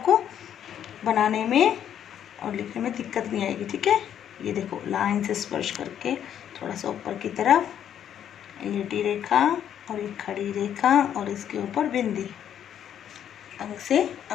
बनाने में और लिखने में दिक्कत नहीं आएगी। ठीक है, ये देखो, लाइन से स्पर्श करके थोड़ा सा ऊपर की तरफ लेटी रेखा और एक खड़ी रेखा और इसके ऊपर बिंदी। अंग से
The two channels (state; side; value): quieter; right; 9.7 dB